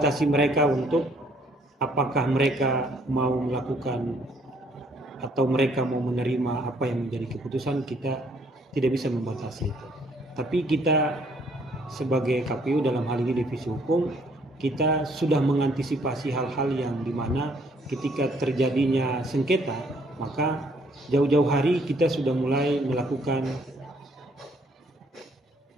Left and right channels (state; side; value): normal; both; correlation 0.64